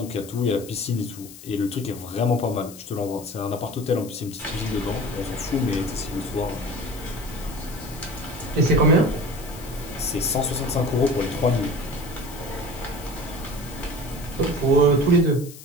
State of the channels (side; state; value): left; noise; hiss, 16 dB below the sound